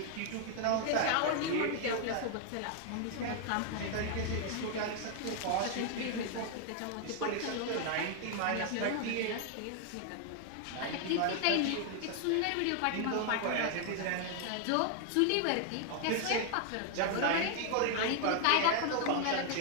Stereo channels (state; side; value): different; both; correlation 0.00